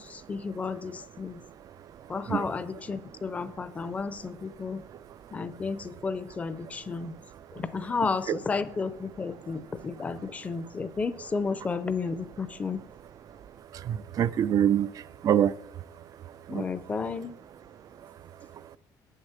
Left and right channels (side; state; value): both; normal; correlation 0.64